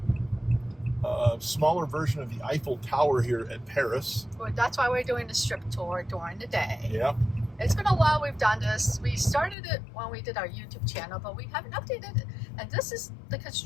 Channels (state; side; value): drops out; right; at 9.6 s